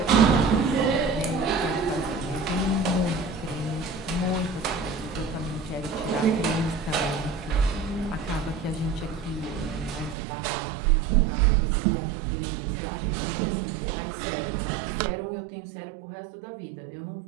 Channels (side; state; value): left; drops out; at 10.2 s